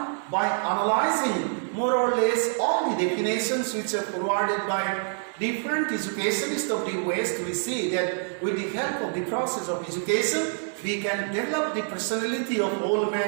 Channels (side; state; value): left; silent; 61 dB below the other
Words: by analyzing more or less all the definitions which are provided by different educationists of the West, we see that with the help of the process of education, we can develop the personality of all